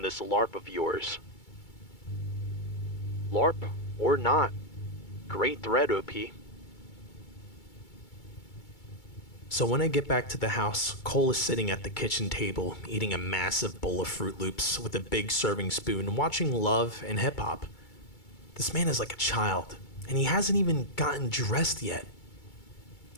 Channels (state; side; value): late; right; 2.3 ms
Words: this LARP of yours." LARP or not, great thread, OP. So when I get back to the house, Cole is sitting at the kitchen table, eating a massive bowl of Fruit Loops with a big serving spoon, watching Love and hip hop. This man is like a child, and he hasn't even gotten dressed yet.